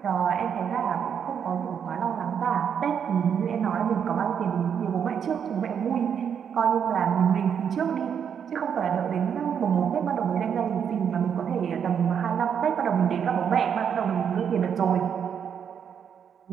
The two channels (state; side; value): quieter; left; 7.8 dB